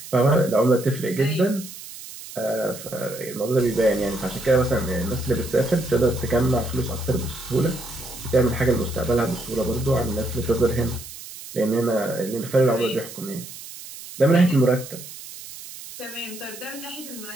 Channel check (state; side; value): noise; right; hiss, 14 dB below the sound